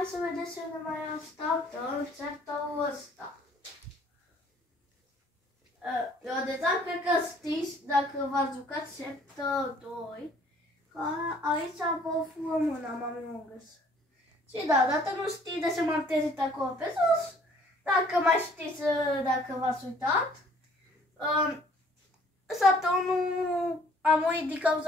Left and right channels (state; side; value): normal; both; correlation 0.58